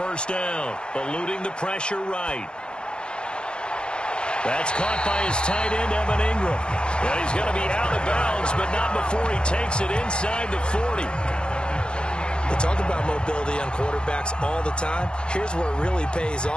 down, eluding the pressure right. That's caught by his tight end, Evan Ingram. And he's going to be out of bounds, but not before he takes it inside the 40. They talk about mobility on quarterbacks all the time. Here's where it really pays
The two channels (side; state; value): right; late; 0.051 ms